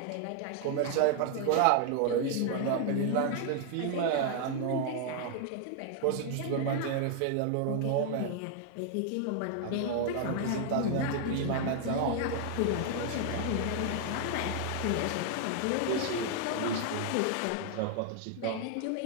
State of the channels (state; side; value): different; both; correlation 0.00